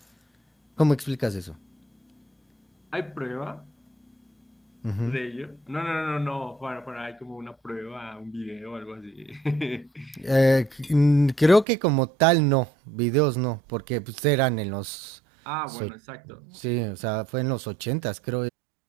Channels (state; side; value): drops out; left; at 11.7 s